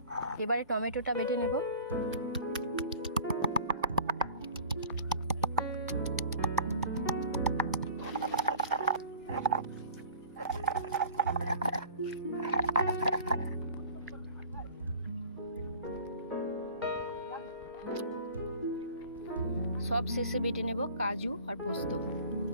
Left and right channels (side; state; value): both; inverted; correlation -0.44